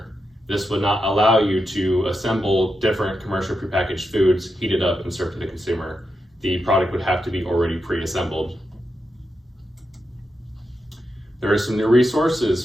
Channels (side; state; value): both; normal; correlation 0.87